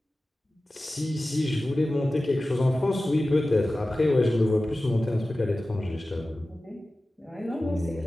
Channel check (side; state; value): both; normal; correlation 0.96